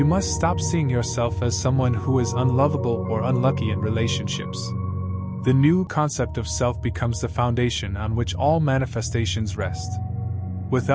must stop seeing yourself as someone who is unlovable or unlucky in relationships. The new concept of self becomes the foundation on which all manifestations rest.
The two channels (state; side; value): identical; both; correlation 1.00